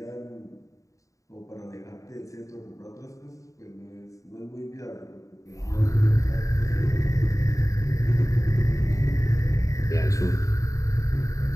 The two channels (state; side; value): late; right; 0.16 ms